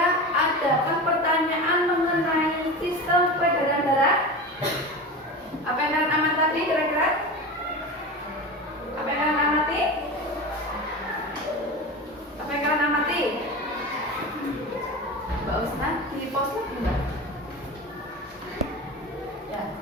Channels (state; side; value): normal; both; correlation 0.28